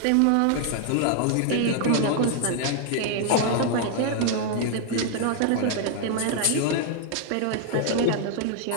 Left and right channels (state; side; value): different; both; correlation 0.00